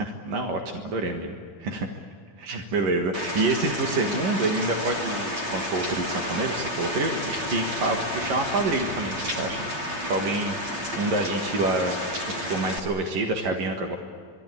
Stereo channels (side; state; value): left; late; 8.7 ms